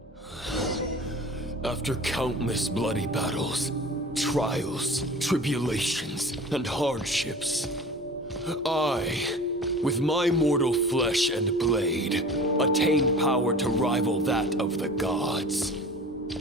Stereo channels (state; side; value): normal; both; correlation 0.40